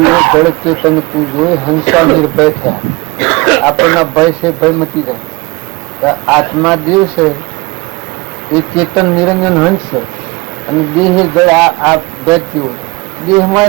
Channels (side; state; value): left; quieter; 24.0 dB